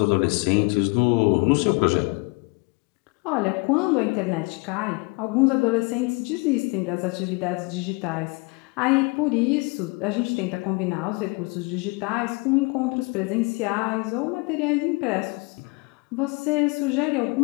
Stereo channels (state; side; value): quieter; right; 28.6 dB